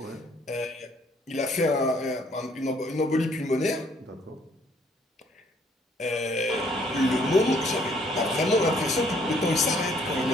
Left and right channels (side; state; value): both; normal; correlation 0.64